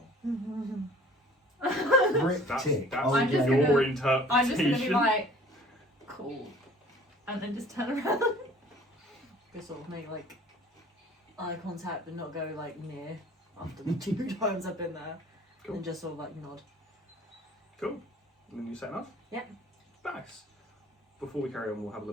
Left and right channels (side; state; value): both; normal; correlation 0.50